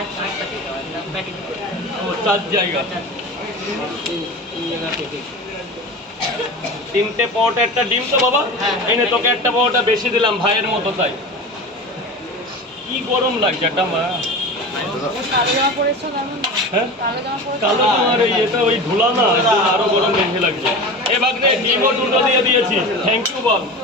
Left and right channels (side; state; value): both; normal; correlation 0.31